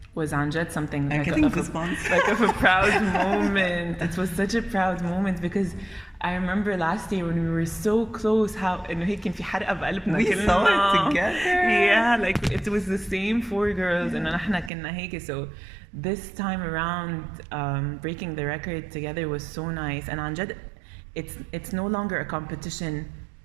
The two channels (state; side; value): drops out; left; at 14.7 s